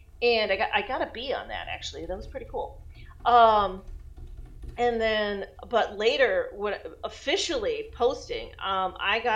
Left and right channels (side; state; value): both; identical; correlation 1.00